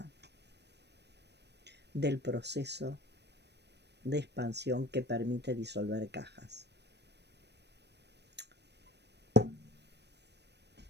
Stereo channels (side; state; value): left; late; 0.49 ms